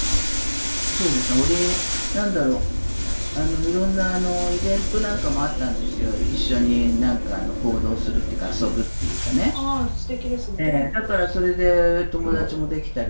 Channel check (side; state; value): both; inverted; correlation -1.00